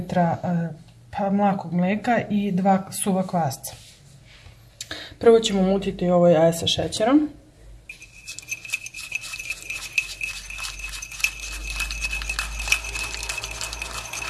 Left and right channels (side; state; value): both; identical; correlation 1.00